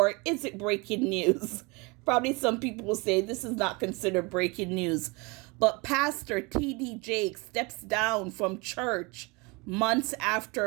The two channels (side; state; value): left; quieter; 27.5 dB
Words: is it breaking news? Probably some people will say this is not considered breaking news. But Pastor T.D. Jakes steps down from church months